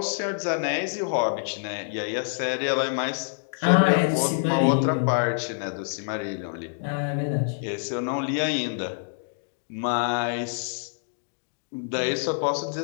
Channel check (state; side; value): silent; right; digital silence